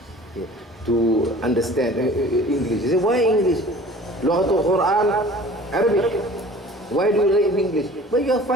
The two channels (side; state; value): both; normal; correlation 0.46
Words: yeah, to understand English. You say, why English? Lughatul Quran, Arabic. Why do you read English? But you are